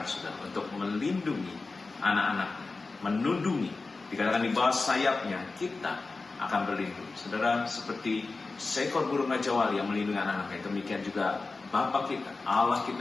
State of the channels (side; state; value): right; quieter; 3.8 dB